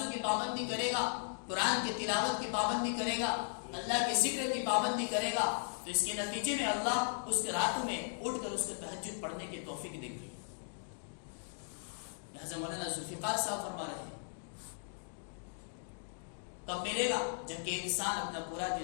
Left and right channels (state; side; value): silent; right; digital silence